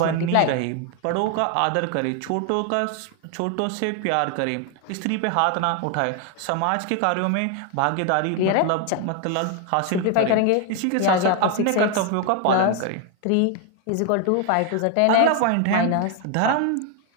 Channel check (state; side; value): different; both; correlation 0.00